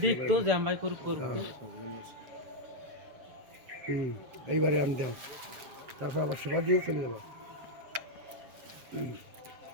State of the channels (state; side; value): late; left; 7.1 ms